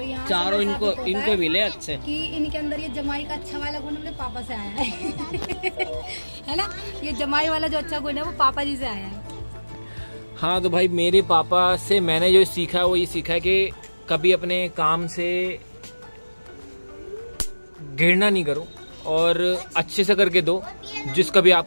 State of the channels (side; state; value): both; inverted; correlation -1.00